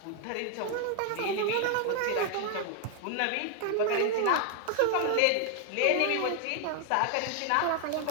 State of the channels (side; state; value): both; different; correlation 0.00